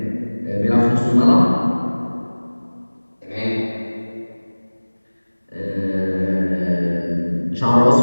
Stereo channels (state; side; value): inverted; both; correlation -1.00